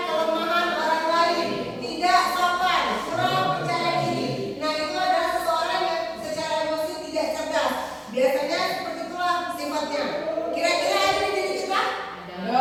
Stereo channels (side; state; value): both; identical; correlation 1.00